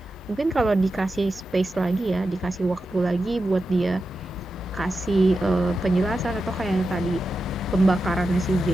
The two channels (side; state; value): both; normal; correlation 0.90